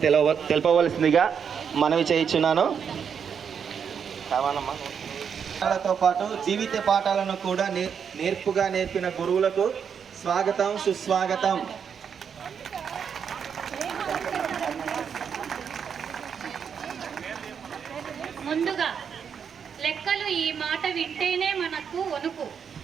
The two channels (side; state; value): left; quieter; 7.2 dB